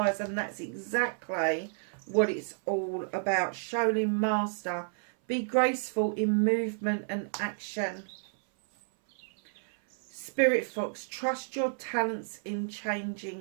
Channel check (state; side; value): silent; left; 57 dB below the other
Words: And that's exactly what it's all about. Shaolin Master. Be graceful in movement and action. Spirit Fox. Trust your talents in